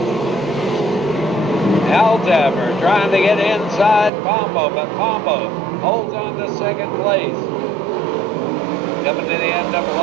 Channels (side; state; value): left; drops out; at 4.1 s